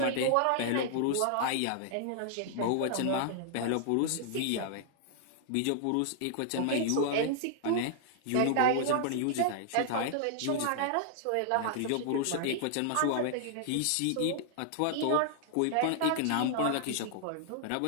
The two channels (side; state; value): both; different; correlation -0.01